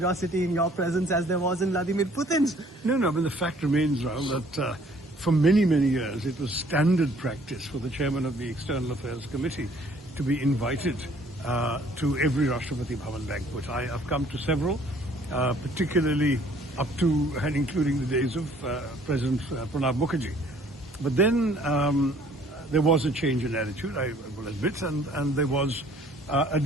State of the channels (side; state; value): both; normal; correlation 0.58